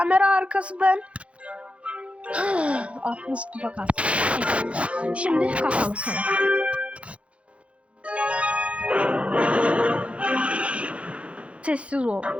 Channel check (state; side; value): late; left; 0.062 ms